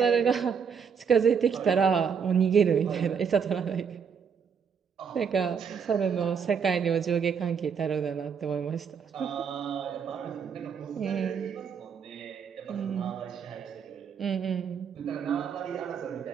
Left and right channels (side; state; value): left; quieter; 6.7 dB